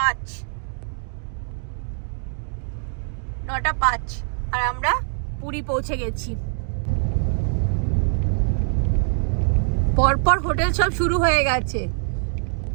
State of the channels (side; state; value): left; silent; digital silence